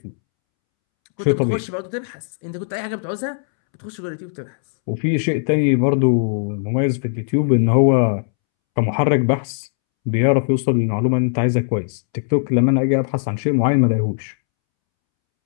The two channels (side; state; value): right; silent; 66 dB below the other